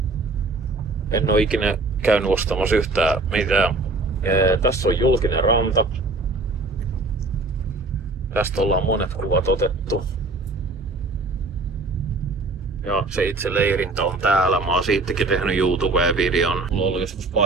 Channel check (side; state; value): left; quieter; 3.2 dB